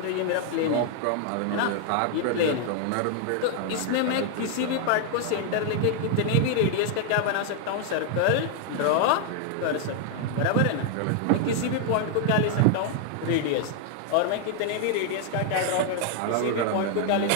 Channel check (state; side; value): different; both; correlation 0.00